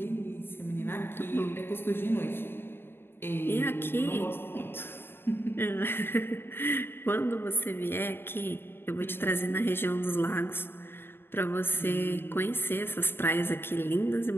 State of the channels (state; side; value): late; right; 0.11 ms